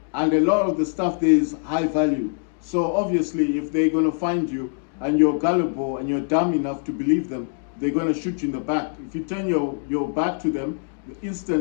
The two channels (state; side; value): silent; right; digital silence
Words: And a lot of the stuff there is high value. So obviously, if they're gonna find you and you're gullible and you're dumb enough to believe them, they're gonna shoot you in the back. If you turn your back to them,